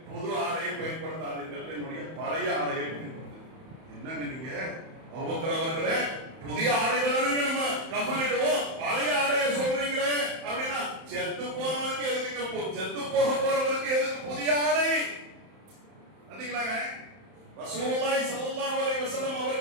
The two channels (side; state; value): left; late; 31 ms